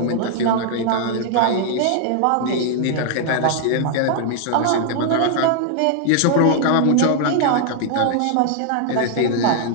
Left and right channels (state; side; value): different; both; correlation 0.00